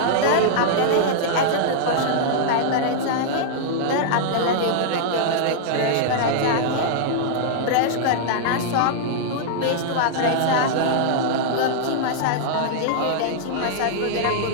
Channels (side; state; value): both; different; correlation -0.01